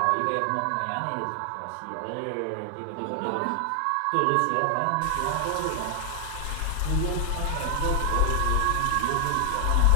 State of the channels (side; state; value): both; different; correlation 0.00